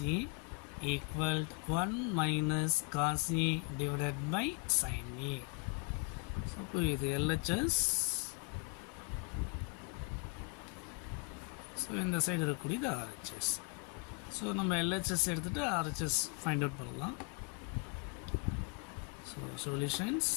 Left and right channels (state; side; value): quieter; right; 33.0 dB